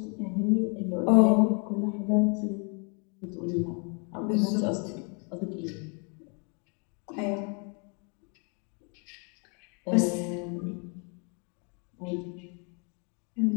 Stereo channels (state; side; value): quieter; right; 36.7 dB